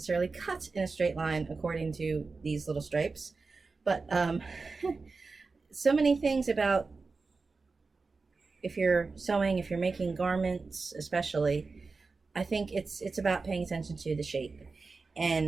cut in a straight line according to these little stripes. But so many things about, if you're sewing, if you're making garments especially, I think it's about paying attention to the shape.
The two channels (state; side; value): quieter; left; 4.1 dB